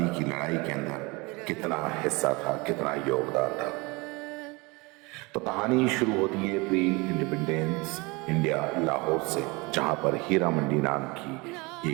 کی لڑائی کے اندر کتنا حصہ تھا، کتنا یوگدان تھا۔ تو کہانی شروع ہوتی ہے پری انڈیپینڈنس انڈیا لاہور سے، جہاں پر ہیرا منڈی نام کی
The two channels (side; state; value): left; quieter; 26.0 dB